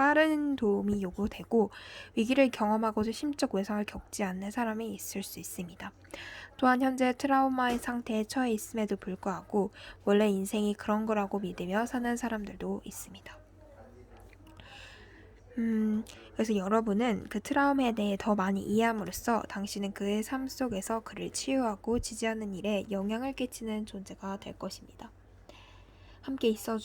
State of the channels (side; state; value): both; identical; correlation 1.00